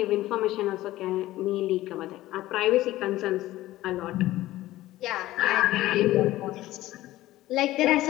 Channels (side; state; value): right; quieter; 16.0 dB